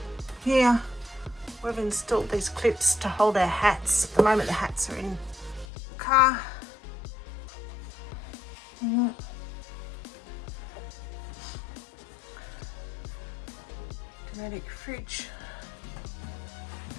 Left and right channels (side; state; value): right; drops out; at 5.7 s